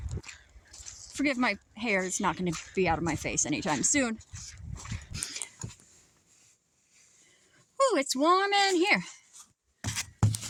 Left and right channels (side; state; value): both; identical; correlation 1.00